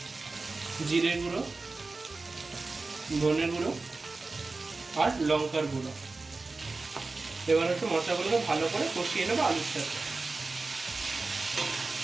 জিরের গুঁড়ো, ধনের গুঁড়ো আর লঙ্কার গুঁড়ো। এবার হচ্ছে মশলাগুলোকে ভালো করে কষিয়ে নেবো আলুর সাথে।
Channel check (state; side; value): quieter; left; 3.6 dB